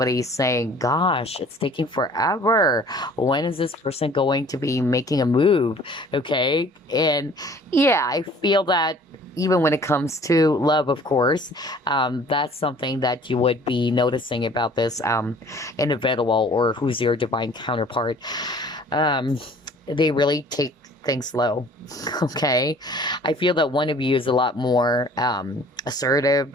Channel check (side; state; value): both; normal; correlation 0.51